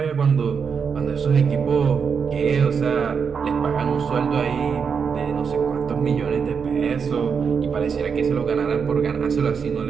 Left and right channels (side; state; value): left; quieter; 6.2 dB